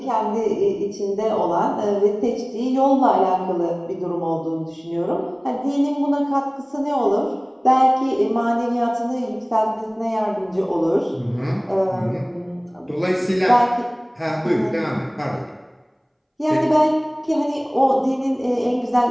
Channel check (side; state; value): both; identical; correlation 1.00